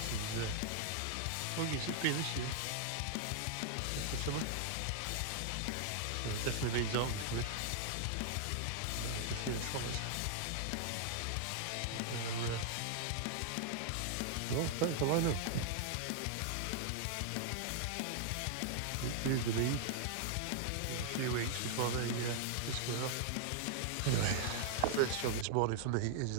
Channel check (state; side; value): different; both; correlation -0.01